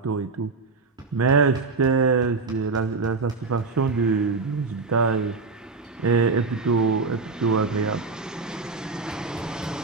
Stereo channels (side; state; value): left; quieter; 4.2 dB